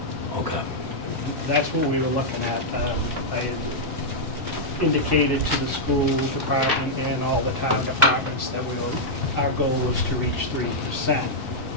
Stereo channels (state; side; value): normal; both; correlation -0.06